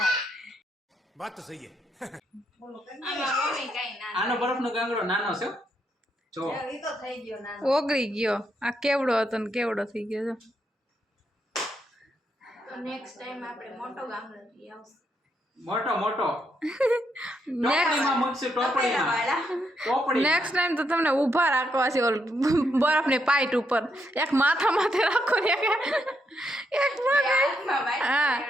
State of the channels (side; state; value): both; normal; correlation 0.79